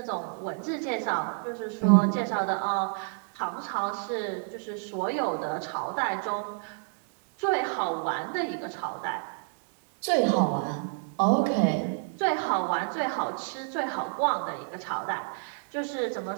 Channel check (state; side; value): silent; left; 58 dB below the other